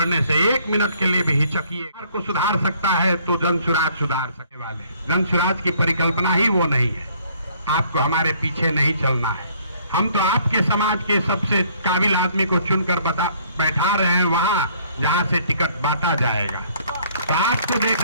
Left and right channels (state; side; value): inverted; both; correlation -0.61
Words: से 1 मिनट के लिए भी हिचकिए को सुधार सकता है तो जनसुराज सुधार सकने वाले। जनसुराज की परिकल्पना ही वो नहीं है। आपको हमारे पीछे नहीं चलना है। हम तो आपके समाज के सबसे काबिल आदमी को चुनकर बैठा रहे हैं वहां जहां से टिकट बांटा जाएगा। तो आपको